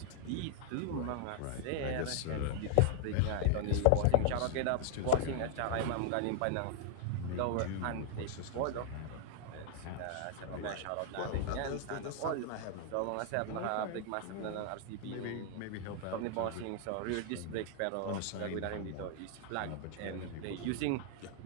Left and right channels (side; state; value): both; different; correlation 0.00